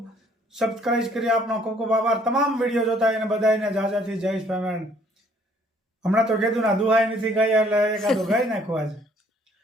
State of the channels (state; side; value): normal; both; correlation 0.61